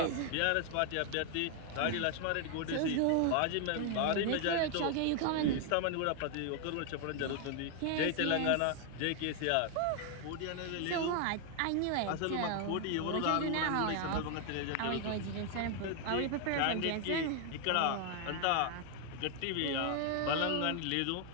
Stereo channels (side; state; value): both; different; correlation 0.00